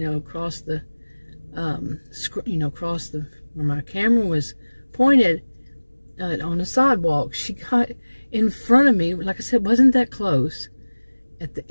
the, across the where my camera was pointed. On the sidewalk, she got in front of me, like I said, wasn't that close, at the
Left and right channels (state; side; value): inverted; both; correlation -1.00